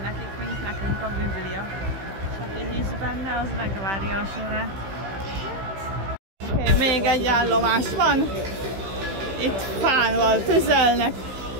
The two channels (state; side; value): late; left; 15 ms